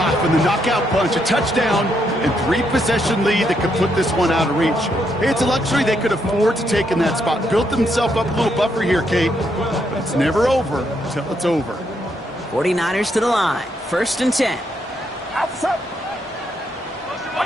the knockout punch, a touchdown, and 3-possession lead that could put this one out of reach. Hey, it's a luxury they could afford to take in that spot. Built themselves up a little buffer here, Kate, but it's never over until it's over. 49ers to the line. First and 10. Outside.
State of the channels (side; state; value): both; normal; correlation 0.77